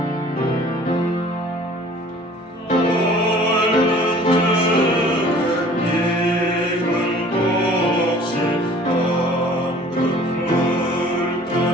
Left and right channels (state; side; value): normal; both; correlation 0.50